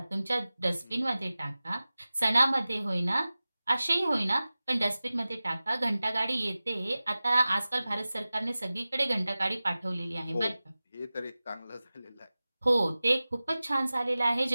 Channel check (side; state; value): both; inverted; correlation -0.96